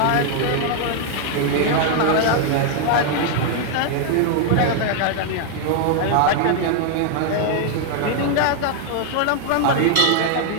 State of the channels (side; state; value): both; different; correlation 0.00